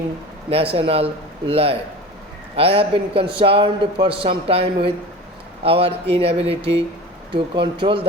national life. I have been concerned for some time with our inability to control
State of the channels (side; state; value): both; normal; correlation 0.34